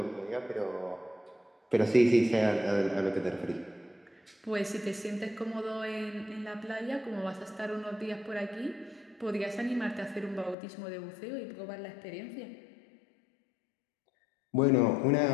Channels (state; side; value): drops out; right; at 10.6 s